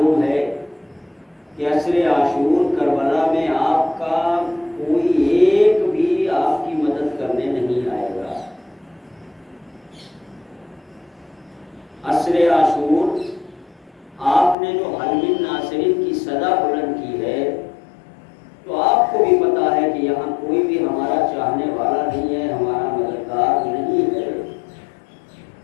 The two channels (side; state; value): right; drops out; at 14.6 s